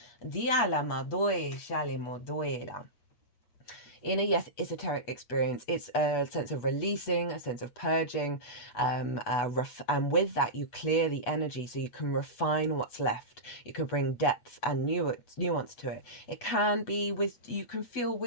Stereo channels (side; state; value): right; late; 8.2 ms